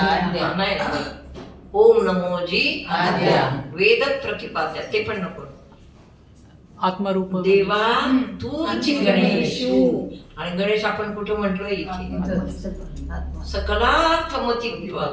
नाही, ओम नमोजी आद्या. वेद प्रतिपाद्या ते पण नको. आत्मरूप देवा तूची गणेश. आणि गणेश आपण कुठं म्हटलोय? इथे. सकलार्थमती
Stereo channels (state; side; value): identical; both; correlation 1.00